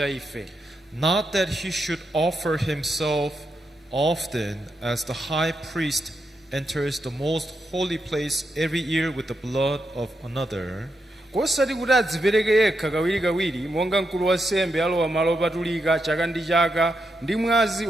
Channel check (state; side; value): normal; both; correlation 0.84